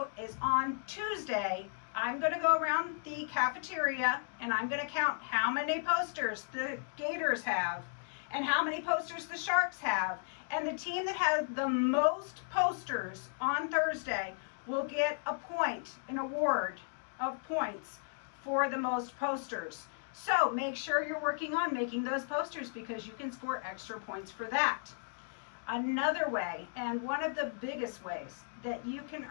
is on Tuesday, I'm going to go around the cafeteria and I'm going to count how many posters the Gators have and how many posters the Sharks have. And the team that has the most posters on Thursday will get a point, an award of points for the most posters. So make sure you're working on making those posters because you can score extra points for that. Another way, and one of the biggest ways that you can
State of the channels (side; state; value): right; silent; digital silence